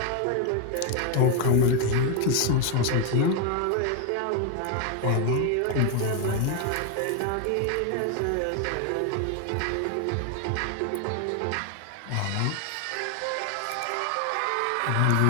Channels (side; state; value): both; different; correlation 0.01